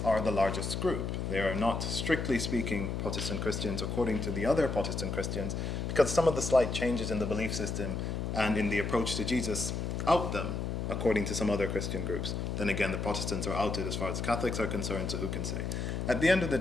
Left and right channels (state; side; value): noise; left; hum, 2 dB below the sound